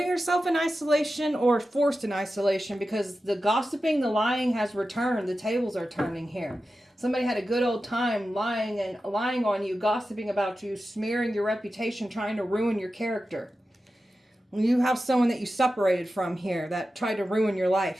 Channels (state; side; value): normal; both; correlation 0.93